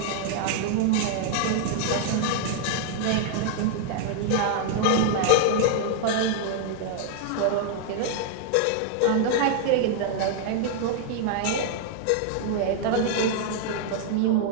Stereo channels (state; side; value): different; both; correlation 0.00